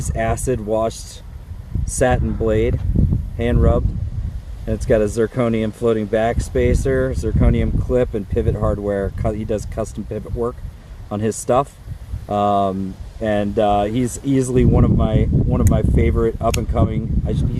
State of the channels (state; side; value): identical; both; correlation 1.00